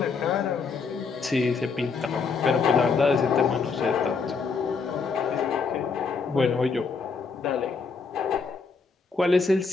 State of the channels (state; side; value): quieter; right; 5.0 dB